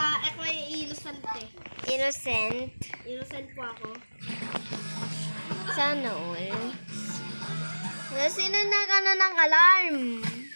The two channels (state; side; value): inverted; both; correlation -1.00